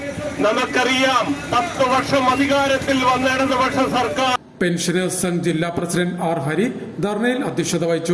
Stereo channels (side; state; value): both; identical; correlation 1.00